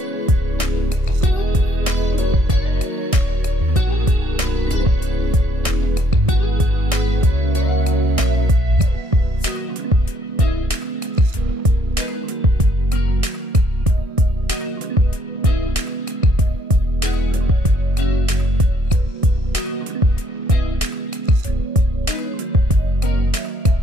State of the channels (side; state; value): left; late; 1.6 ms